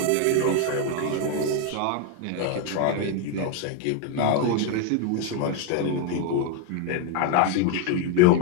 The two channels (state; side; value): different; both; correlation 0.02